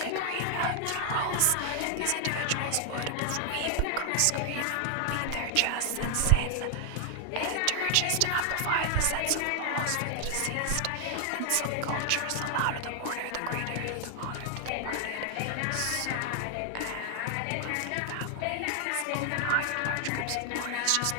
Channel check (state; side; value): different; both; correlation 0.00